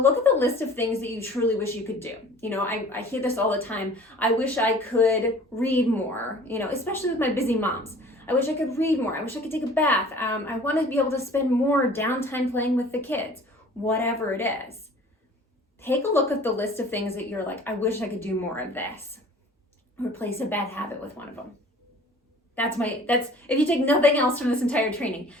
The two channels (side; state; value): both; normal; correlation 0.48